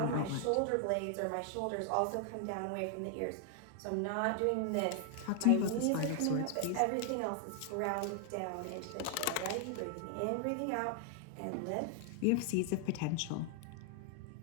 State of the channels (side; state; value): both; different; correlation 0.00